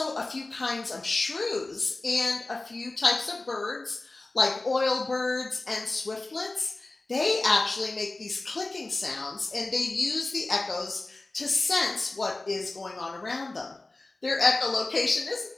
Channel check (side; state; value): right; quieter; 3.1 dB